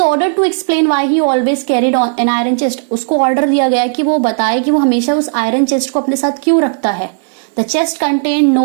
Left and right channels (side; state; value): left; silent; digital silence